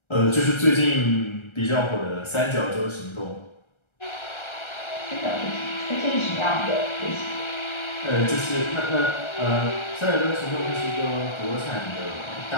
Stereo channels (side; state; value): right; late; 1.3 ms